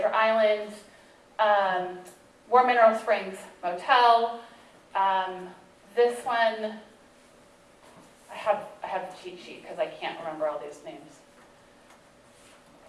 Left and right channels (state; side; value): identical; both; correlation 1.00